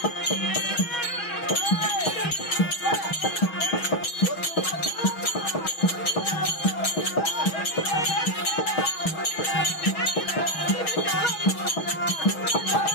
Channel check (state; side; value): late; right; 6.3 ms